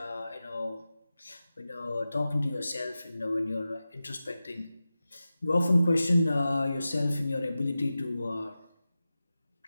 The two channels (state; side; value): inverted; both; correlation -0.94